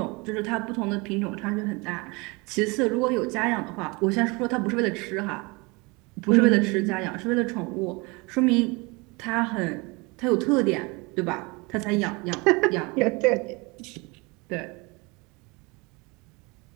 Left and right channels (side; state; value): left; quieter; 27.0 dB